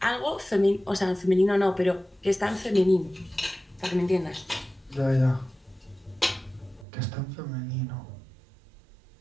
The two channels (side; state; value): left; drops out; at 6.9 s